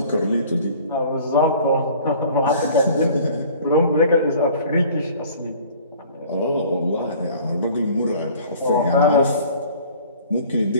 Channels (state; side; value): inverted; both; correlation -0.49